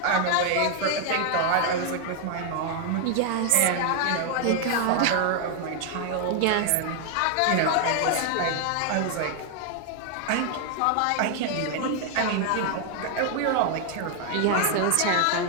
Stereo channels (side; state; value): both; different; correlation 0.00